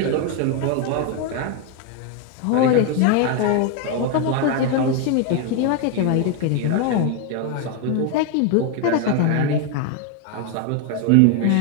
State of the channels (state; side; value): different; both; correlation 0.01